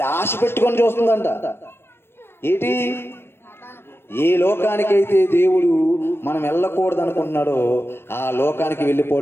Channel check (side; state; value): right; late; 0.11 ms